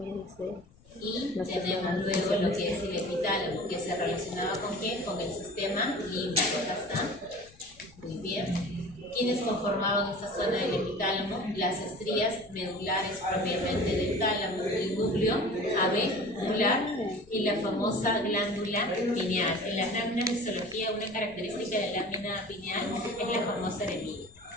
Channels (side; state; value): left; noise; rumble, 26 dB below the sound